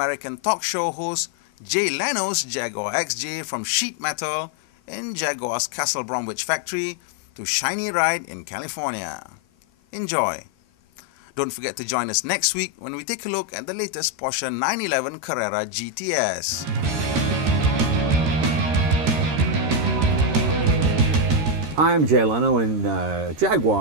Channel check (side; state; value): left; late; 13 ms